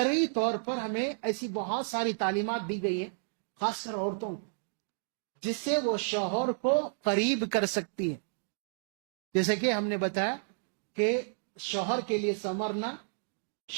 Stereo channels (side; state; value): left; silent; digital silence